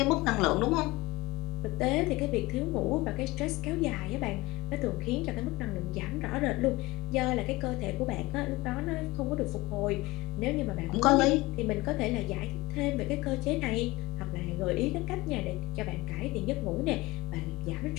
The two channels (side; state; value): right; quieter; 21.6 dB